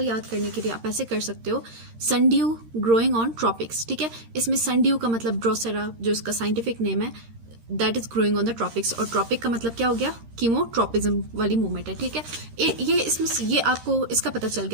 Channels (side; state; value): left; late; 13 ms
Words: याद करने के लिए आप ऐसे कर सकते हो, सनड्यू ग्रोइंग ऑन ट्रॉपिक्स। ठीक है, इसमें सनड्यू का मतलब ड्रोसेरा, जो इसका साइंटिफिक नेम है, that is growing on the tropics, और ट्रॉपिक का मतलब क्या हो गया? कीमोट्रॉपिज्म वाली मूवमेंट है। ठीक है, ये इसमें ये आपको इसका पता चल